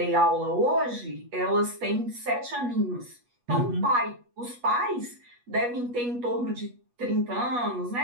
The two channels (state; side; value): late; left; 8.3 ms